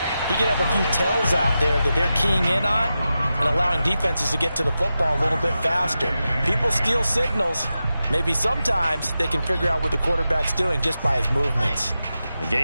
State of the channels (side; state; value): both; inverted; correlation -0.91